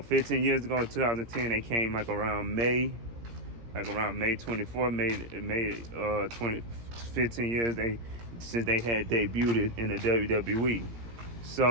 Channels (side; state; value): left; late; 17 ms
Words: years ago in 2010, they came like around May 24, made 15 years since they had debuted in the WWE.